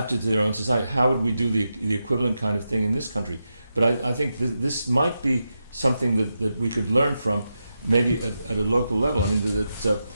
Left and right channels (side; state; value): both; inverted; correlation -0.88